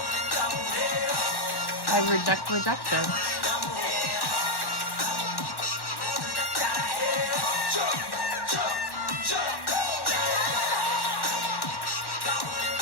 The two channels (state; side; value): late; right; 1.1 ms